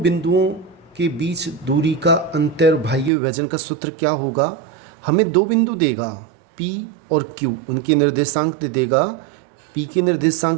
के बीच दूरी का अंत्य और बाह्य विभाजन का सूत्र क्या होगा? हमें दो बिंदु देगा, P और Q, उनके निर्देशांक दे देगा। P के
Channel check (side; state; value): left; drops out; at 3.1 s